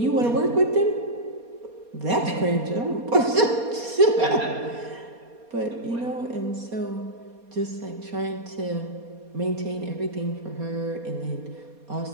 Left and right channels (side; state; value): left; late; 4.2 ms